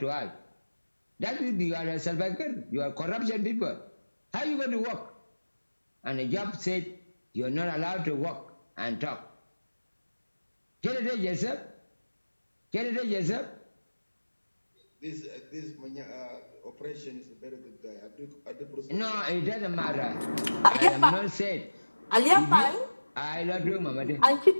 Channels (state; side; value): inverted; both; correlation -1.00